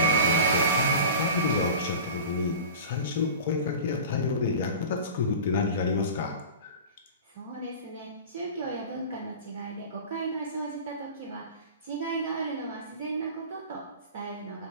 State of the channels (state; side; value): inverted; both; correlation -0.35